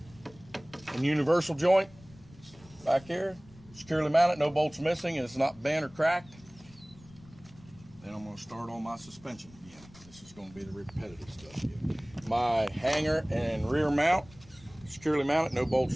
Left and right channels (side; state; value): left; noise; rumble, 23 dB below the sound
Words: and universal joint back here, securely mounted, no bolts missing, and it's not bent or cracked. Then I'm going to start on my suspension again. This is going to be the repetitive stuff here. My hanger and rear mount, securely mounted, no bolts